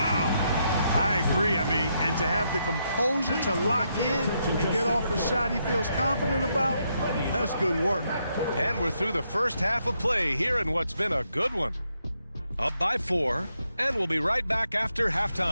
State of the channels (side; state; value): both; inverted; correlation -0.79